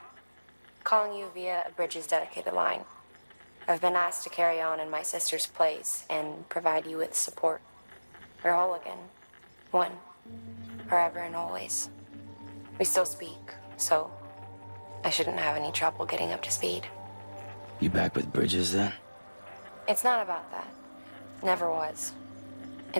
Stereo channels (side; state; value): both; inverted; correlation -1.00